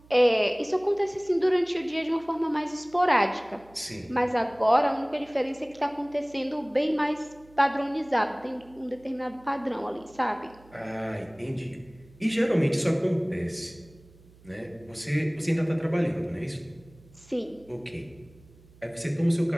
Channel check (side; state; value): right; noise; hum, 26 dB below the sound